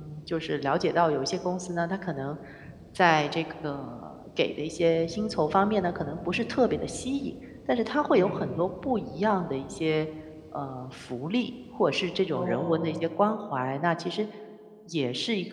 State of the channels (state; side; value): identical; both; correlation 1.00